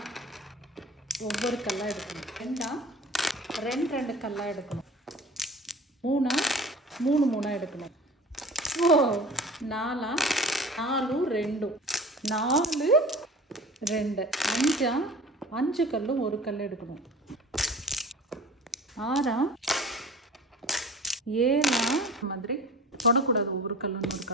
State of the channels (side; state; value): both; normal; correlation 0.41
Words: ஒவ்வொரு கல்லாக எடுக்கணும். ரெண்டா ரெண்டு கல்லாக எடுக்கணும். மூணா மூணா எடுக்கணும். நாலா 4 2 4 2 அஞ்சா 5 கல்லும் ஒரு கல் எடுக்கணும். 6 7 மாதிரி தொடக்கூடாது. ஒவ்வொரு கல்லும் ஒரு